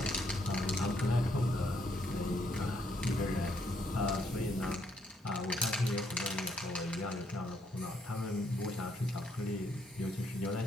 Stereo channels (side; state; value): both; normal; correlation 0.72